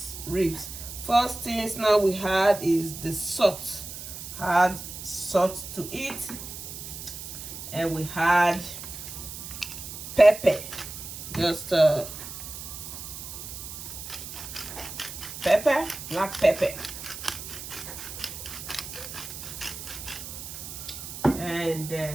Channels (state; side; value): noise; right; hiss, 10 dB below the sound